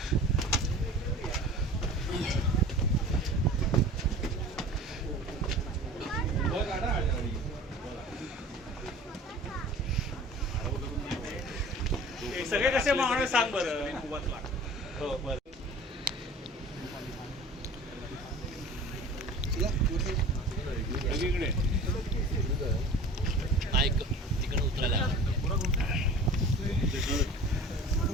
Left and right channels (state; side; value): normal; both; correlation 0.41